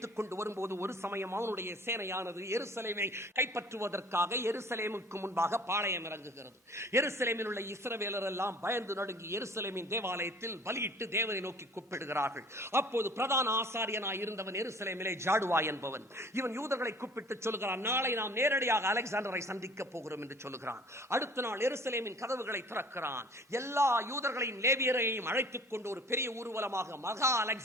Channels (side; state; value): both; normal; correlation 0.50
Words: கொண்டு வரும்போது ஒரு சமயம் அவனுடைய சேனையானது எருசலேமை கைப்பற்றுவதற்காக எருசலேமுக்கு முன்பாக பாளையம் இறங்குகிறது. எருசலேமில் உள்ள இஸ்ரவேலர் எல்லாம் பயந்து நடுங்கி எருசலேமின் தேவாலயத்தில் பலியிட்டு தேவனை நோக்கி கூப்பிடுகிறார்கள். அப்போது பிரதான ஆசாரியனாய் இருந்தவன் எருசலேமிலே ஜாடுவா என்பவன், இவன் யூதர்களை கூப்பிட்டு சொல்லுகிறான், நாளை நாம் நேரடியாக அலெக்சாண்டரை சந்திக்க போகிறோம் என்று சொல்லுகிறான். அடுத்த நாள் எருசலேமின் கதவுகளை திறக்கிறான். எல்லா யூதர்களையும் லேவியரையும் அழைத்துக் கொண்டு ஒரு பெரிய ஊர்வலமாக மகா